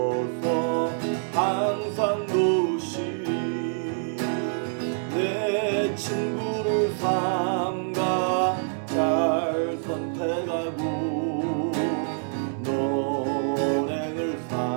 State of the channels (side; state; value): left; silent; digital silence